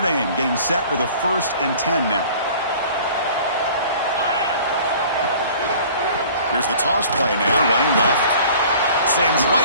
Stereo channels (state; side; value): inverted; both; correlation -0.48